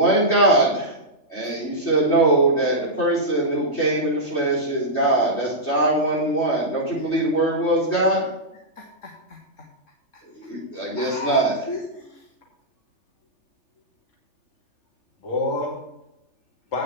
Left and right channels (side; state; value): right; late; 3.4 ms